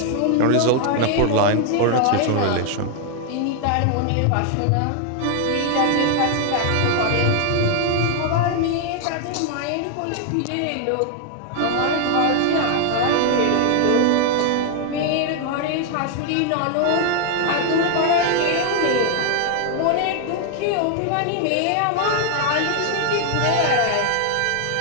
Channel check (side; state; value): both; different; correlation 0.00